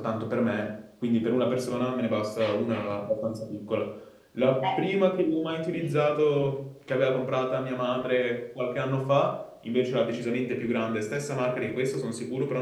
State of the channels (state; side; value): identical; both; correlation 1.00